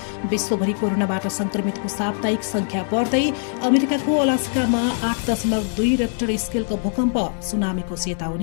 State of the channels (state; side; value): silent; right; 56 dB below the other